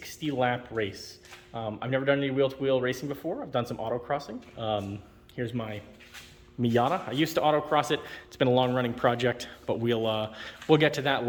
race. I've never done any wheel-to-wheel racing before. I've done some autocrossing. Here's my Miata. I used to autocross it. It's been a long-running project, but we'll get to that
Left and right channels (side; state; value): both; identical; correlation 1.00